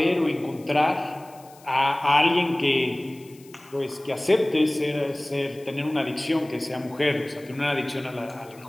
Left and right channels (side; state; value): left; noise; hiss, 25 dB below the sound